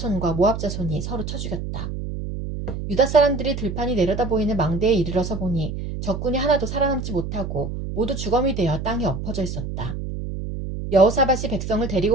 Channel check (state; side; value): noise; right; hum, 6 dB below the sound